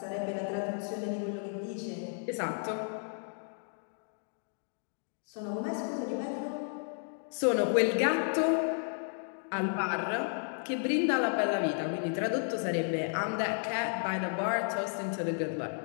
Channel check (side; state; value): right; silent; 56 dB below the other